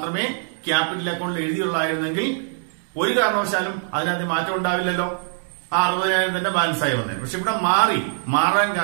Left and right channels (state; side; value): silent; left; digital silence